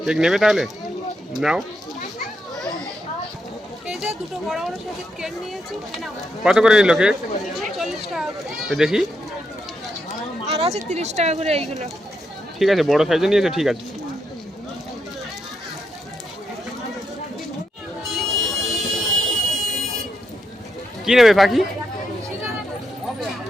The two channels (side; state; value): both; normal; correlation 0.81